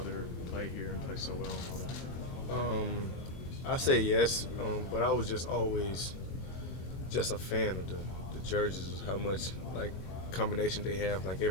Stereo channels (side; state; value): right; late; 23 ms